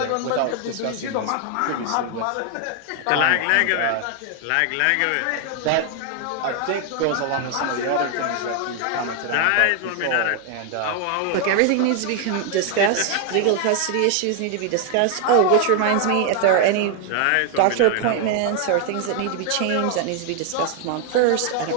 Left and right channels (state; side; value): different; both; correlation 0.00